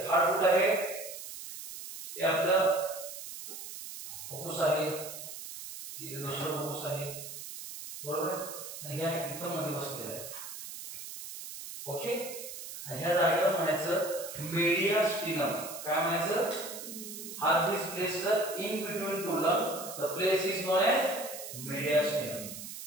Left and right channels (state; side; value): noise; right; hiss, 10 dB below the sound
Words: हार्ट कुठं आहे? हे आपलं फुफ्फुस आहे, हे दुसरं फुफ्फुस आहे, बरोबर. आणि ह्या इथं मध्ये बसलेलं आहे. ओके. आणि ह्या जागेला म्हणायचं मेडियास्टिनम. काय म्हणायचं? Heart is placed in between two lung. The place is known as mediastinum.